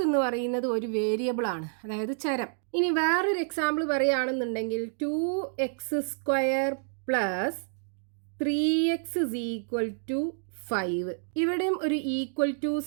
എന്ന് പറയുന്നത് ഒരു വേരിയബിൾ ആണ്, അതായത് ചരം. ഇനി വേറൊരു എക്സാമ്പിൾ പറയുകയാണെന്നുണ്ടെങ്കിൽ 2x² plus 3x is equal to 5. ഇവിടെയും ഒരു ഈക്വൽ ടു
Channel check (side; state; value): left; silent; digital silence